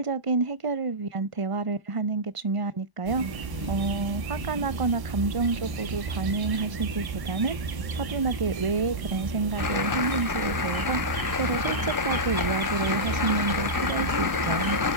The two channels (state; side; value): late; left; 1.0 ms